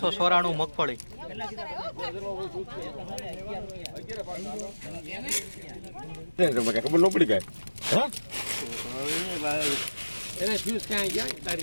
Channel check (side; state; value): both; inverted; correlation -1.00